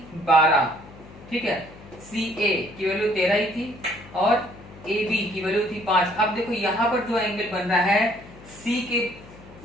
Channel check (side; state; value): left; noise; hum, 20 dB below the sound